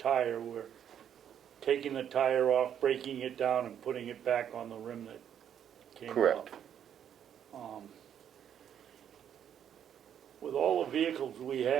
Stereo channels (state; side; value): quieter; left; 9.2 dB